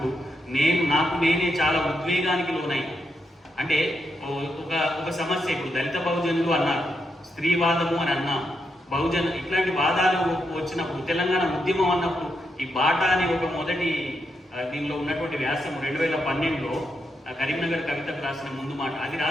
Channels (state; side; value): normal; both; correlation 0.82